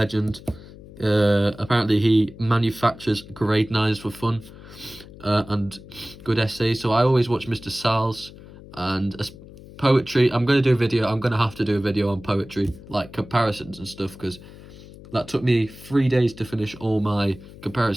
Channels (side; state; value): left; noise; hum, 18 dB below the sound